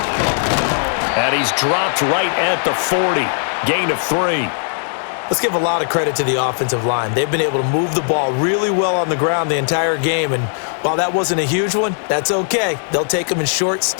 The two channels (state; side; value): silent; right; digital silence